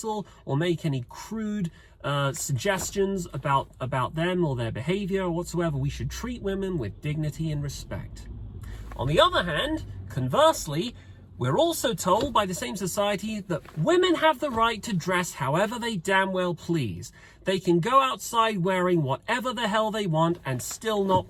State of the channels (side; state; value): both; identical; correlation 1.00